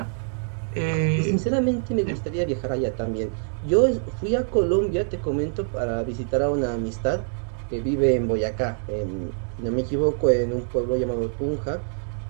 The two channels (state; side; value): silent; left; digital silence